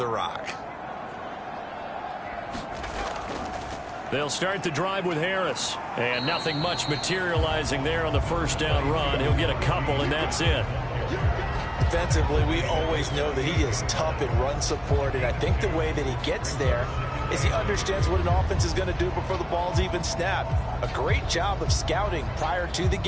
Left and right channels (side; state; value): both; identical; correlation 1.00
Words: rock. They'll start the drive with Harris. And nothing much materializing there on the first down run. He'll get a couple, and that's it. Defensively, we always know that he is tough in run support, and I think the way that he gets there is he understands what an offense is going to do before the ball's even snapped. A great job of scouting prior to the